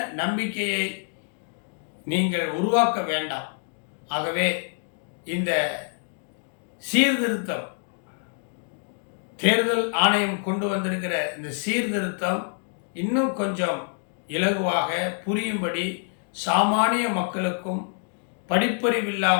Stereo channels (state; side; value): silent; right; 56 dB below the other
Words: நம்பிக்கையை நீங்கள் உருவாக்க வேண்டாம். ஆகவே இந்த சீர்திருத்தம், தேர்தல் ஆணையம் கொண்டு வந்திருக்கிற இந்த சீர்திருத்தம் இன்னும் கொஞ்சம் இலகுவாக புரியும்படி சாமானிய மக்களுக்கும்